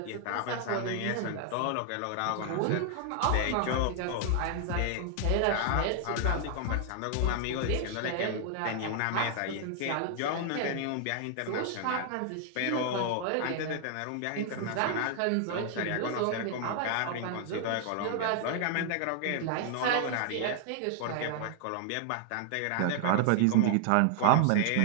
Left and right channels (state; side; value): different; both; correlation 0.00